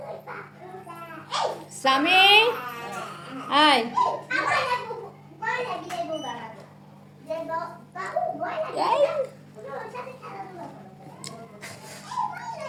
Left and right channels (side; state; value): both; identical; correlation 1.00